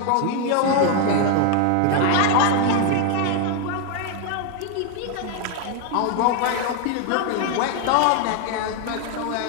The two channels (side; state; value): both; different; correlation 0.01